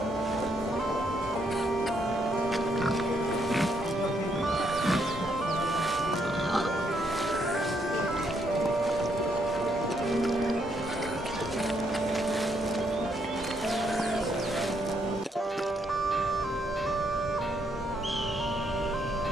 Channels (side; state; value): both; normal; correlation 0.74